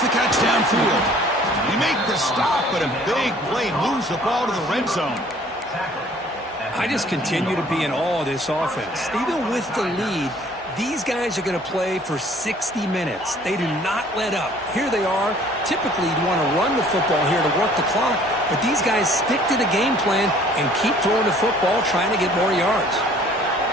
catch downfield. They make the stop, but a big play moves the ball to the red zone. I just continue to be in awe of this offense. Even with the lead, these guys are going to play for 60 minutes. They do not let up. Here they are. Typically, you want to run the football here to work the clock, but these guys stick to the game plan and keep throwing the football, trying to get more yards.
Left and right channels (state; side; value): normal; both; correlation 0.55